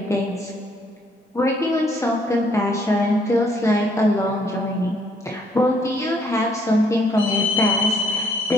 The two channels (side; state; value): both; normal; correlation 0.66